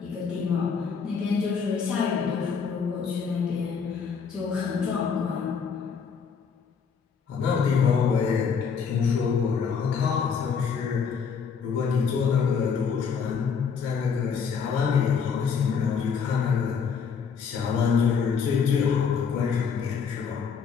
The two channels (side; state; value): right; quieter; 6.2 dB